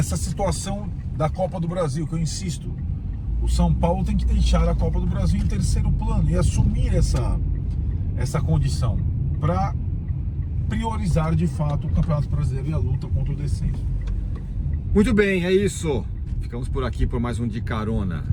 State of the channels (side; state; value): both; identical; correlation 1.00